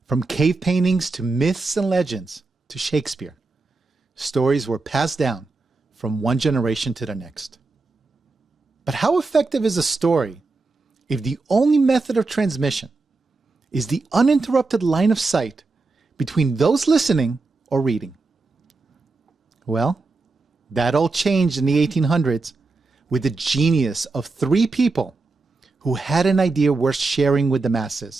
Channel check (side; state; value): left; quieter; 3.6 dB